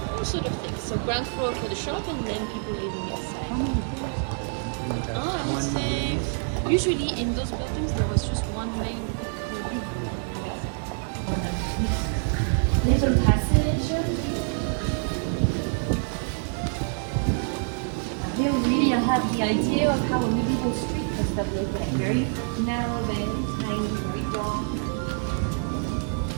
all sort of things. So ground floor for the shop and then people living inside. I would say usually in those buildings there was just one main little passage. Here really I have the idea of how a medieval street must have looked like. Very narrow, very tiny, very dark.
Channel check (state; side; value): silent; left; 58 dB below the other